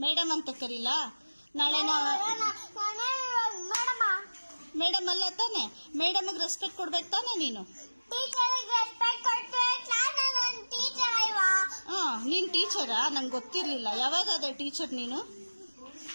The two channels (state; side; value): inverted; both; correlation -1.00